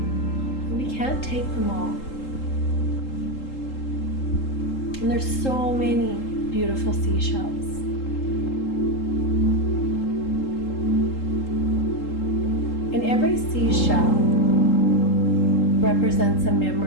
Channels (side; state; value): right; late; 3.8 ms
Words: We can't take them all. And there's so many beautiful seashells. And every seashell represents a